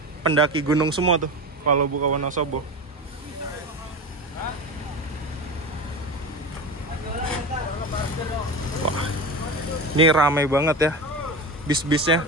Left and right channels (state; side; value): normal; both; correlation 0.26